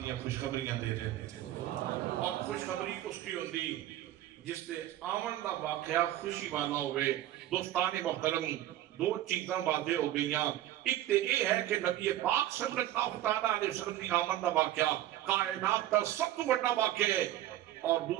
دیا خوشخبریاں دے رہے ہیں اور خوشخبری اس کی ہوندی جس سے آمن دا واقعہ خوشی والا ہوئے دوستان محترم 2 چیزاں واضح ہو گئیاں ایک تے یہ ہے کہ نبی پاک صلی اللہ علیہ وسلم کی آمد دا واقعہ کائنات کا سب تو بڑا واقعہ ہے اور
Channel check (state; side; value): quieter; left; 13.6 dB